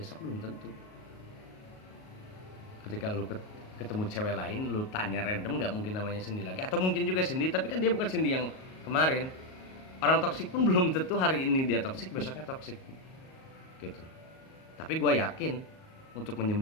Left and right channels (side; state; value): right; late; 38 ms